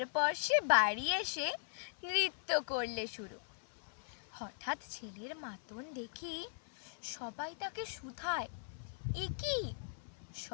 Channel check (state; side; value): silent; right; 51 dB below the other